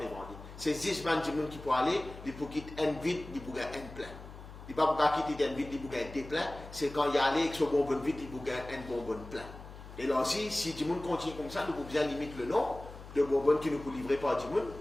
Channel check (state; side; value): noise; left; hum, 15 dB below the sound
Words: C'est 10 man qui pour aller, il faut quitter un vide, il faut gagner un plein. Il ne faut pas quitter un vide, il faut gagner deux pleins. C'est quand il y a allé avec ce bonbonne vide, il faut gagner un bonbonne plein. Et là aussi, si du monde continue comme ça, nous pouvons bien limiter le nom de bonbonne qui nous peut livrer par du monde.